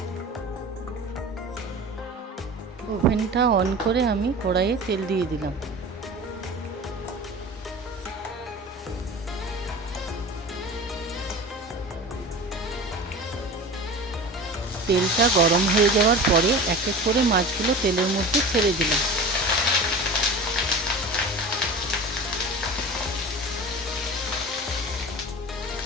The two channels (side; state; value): both; normal; correlation 0.35